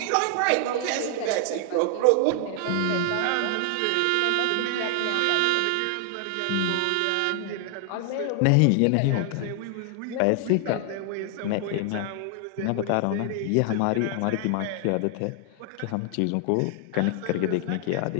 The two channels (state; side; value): different; both; correlation 0.00